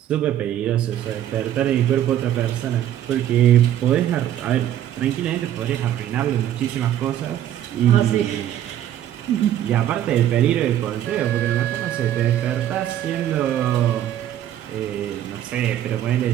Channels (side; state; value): left; quieter; 11.5 dB